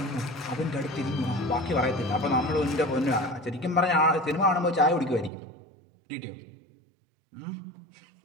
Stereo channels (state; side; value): drops out; left; at 5.3 s